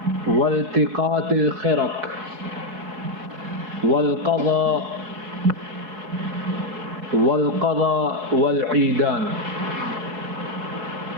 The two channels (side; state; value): left; late; 4.7 ms